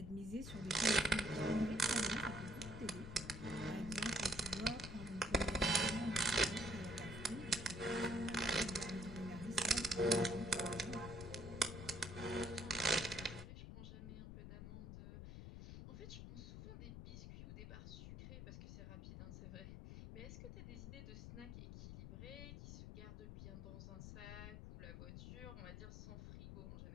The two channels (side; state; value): left; noise; rumble, 9 dB below the sound